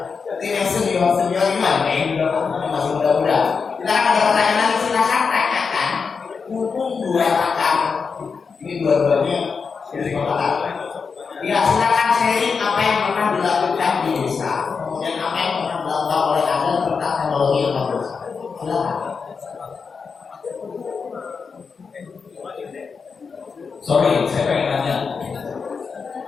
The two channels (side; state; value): right; quieter; 5.4 dB